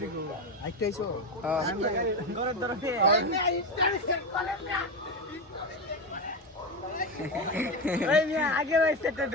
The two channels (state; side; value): normal; both; correlation 0.14